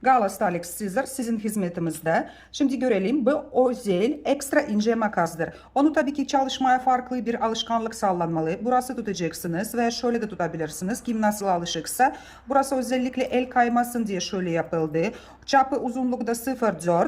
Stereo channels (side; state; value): both; identical; correlation 1.00